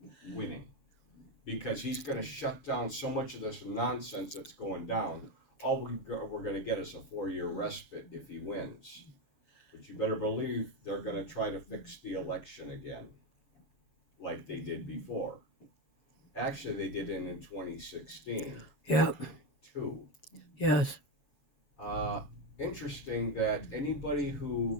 winning because he's going to shut down so much of this nonsense that's going down. All we're going to get is a 4-year respite if he wins. But you better believe they're going to try to fix the election again, like they did before. Actually, they did it in 2016. Yeah. Too. Yes. Interesting that anybody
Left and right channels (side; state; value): right; late; 7.2 ms